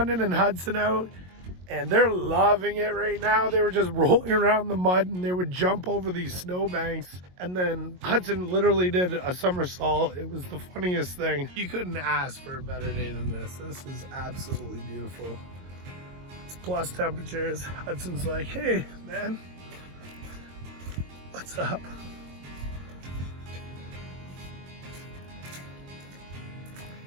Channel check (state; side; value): late; left; 22 ms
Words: and Hudson out, and they're loving it right now. They were just rolling around the mud and they would jump over these snowbanks. And then Hudson literally did a somersault. It was the funniest thing. You couldn't ask for a better day than this. This is absolutely beautiful. It's plus temperatures. Hudson's like, hey, man, what's up?